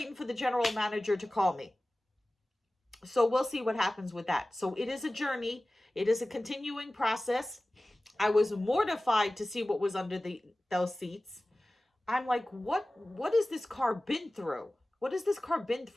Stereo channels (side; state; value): both; normal; correlation 0.97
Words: for the general manager to call me. So we'll see what happens with that. So it is a journey. It is a continuing process. I was mortified to see what was under those seats. I'm like, what has this car been through? What has this car been